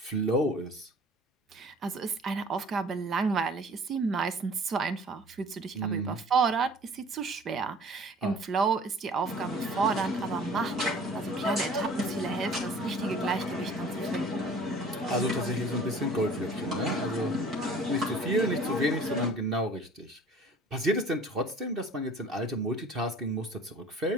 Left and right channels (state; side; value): normal; both; correlation 0.48